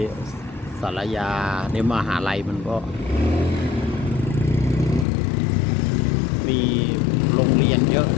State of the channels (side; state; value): right; drops out; at 5.1 s